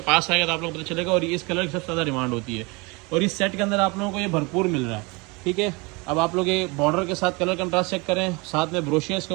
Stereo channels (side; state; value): left; quieter; 27.3 dB